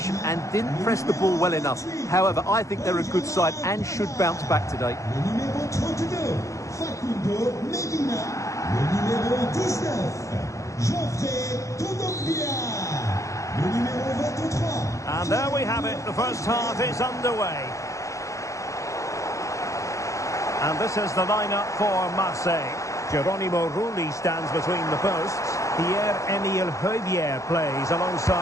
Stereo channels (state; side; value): late; right; 0.15 ms